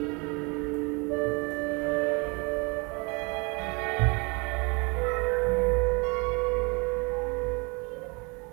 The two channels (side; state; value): left; quieter; 30.1 dB